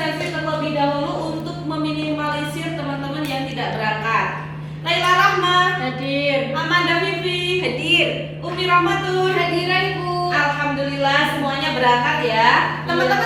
terlebih dahulu untuk meminimalisir teman-teman yang tidak berangkat. Laila Rahma Hadir. Amanda Vivi hadir. Umi Rahmatul Hadiran Ibu. Alhamdulillah semuanya berangkat ya.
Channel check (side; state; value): both; identical; correlation 1.00